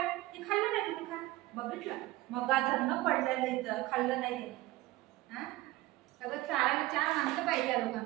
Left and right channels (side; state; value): left; quieter; 18.3 dB